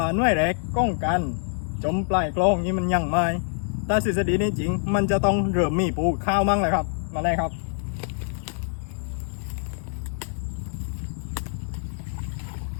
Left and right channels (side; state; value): right; silent; 61 dB below the other